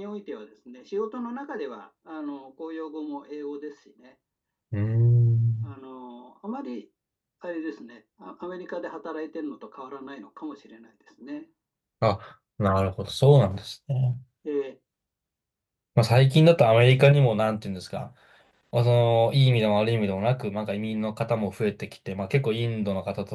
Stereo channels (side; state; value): both; identical; correlation 1.00